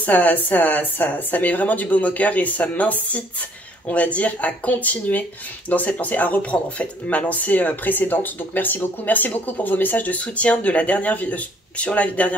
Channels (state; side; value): normal; both; correlation 0.61